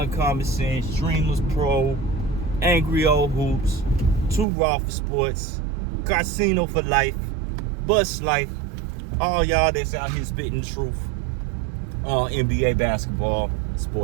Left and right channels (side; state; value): left; drops out; at 4.5 s